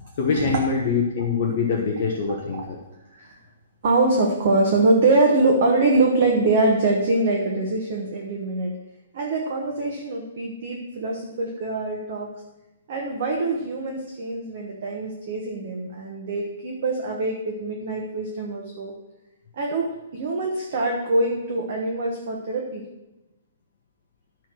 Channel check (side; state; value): both; inverted; correlation -0.48